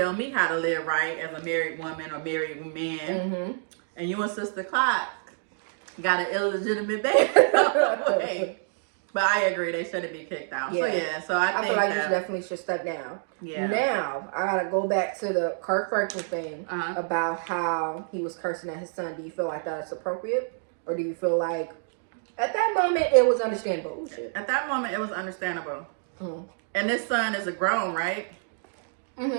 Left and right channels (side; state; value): left; silent; digital silence